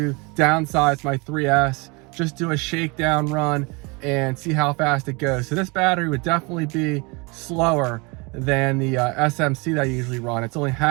downsize my 3S, just do a shakedown run and see how fast it goes. So this battery would definitely be slower than the SMC that I usually run. It's only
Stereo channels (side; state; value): left; quieter; 28.3 dB